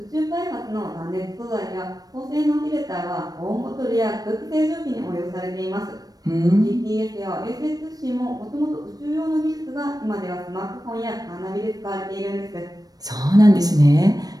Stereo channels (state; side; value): late; left; 0.18 ms